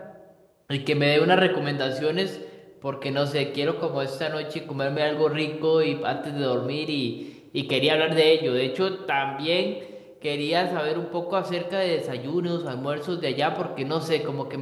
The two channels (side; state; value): both; identical; correlation 1.00